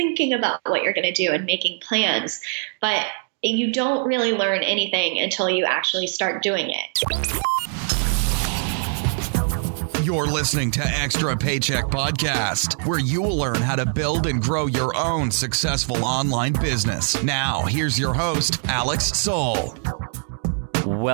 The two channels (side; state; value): left; silent; 58 dB below the other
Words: about what you're going to do and making plans. But you don't really learn anything until you actually start doing it. You're listening to Extra Paycheck Podcast, where you will learn how to build and grow your own successful online business. Now, here's your host, Alex Soul.